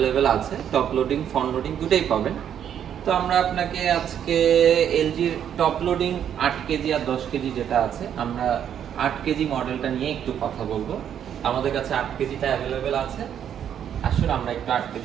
আছে, টপ লোডিং ফ্রন্ট লোডিং দুটোই পাবেন। তো আমরা আপনাকে আজকে এলজির টপ লোডিং 8 কেজি আর 10 কেজি যেটা আছে, আমরা 8 কেজি মডেলটা নিয়ে একটু কথা বলবো। আমাদের কাছে 8 কেজিটা অ্যাভেলেবেল আছে। আসলে আমরা একটু 8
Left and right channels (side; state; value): left; quieter; 9.3 dB